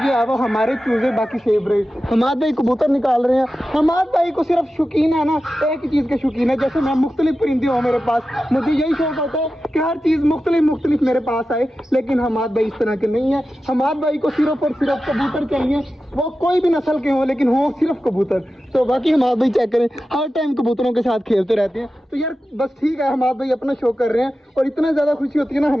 है वो हमारे चूज़े बाकी सेफ रहे। हमाद भाई कबूतर निकाल रहे हैं। हमाद भाई को सिर्फ शौकीन है ना एक ही चीज़ के शौकीन है, जैसे मैं मुख्तलिफ परिंदे हो मेरे पास, मुझे यही शौक होता है कि हर चीज़ मुख्तलिफ मेरे पास आए। लेकिन हमाद भाई इस तरह के नहीं है। हमाद भाई को सिर्फ और सिर्फ कबूतर चाहिए, वो कोई भी नस्ल के हो लेकिन हो सिर्फ कबूतर। तो बाकी हमाद भाई चेक करें, हर टाइम कबूतरों के साथ खेलते रहते हैं। तो यार बस ठीक है, हमाद भाई अपना शौक कर रहे हैं और इतना ज़्यादा खुशी होती है ना,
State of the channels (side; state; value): both; normal; correlation 0.93